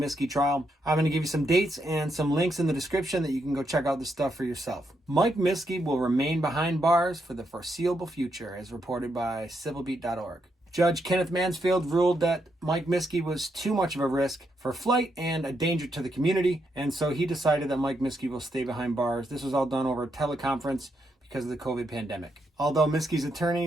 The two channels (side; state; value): both; normal; correlation 0.80